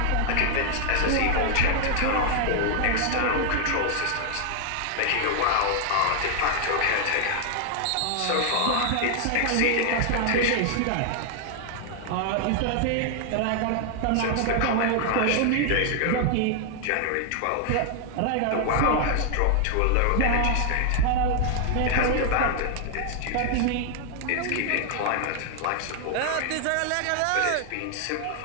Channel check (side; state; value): both; different; correlation 0.00